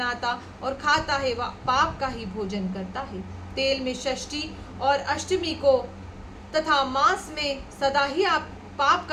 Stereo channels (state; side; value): identical; both; correlation 1.00